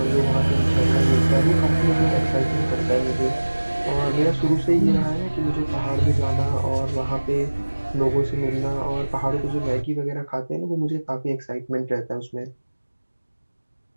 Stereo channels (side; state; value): both; inverted; correlation -1.00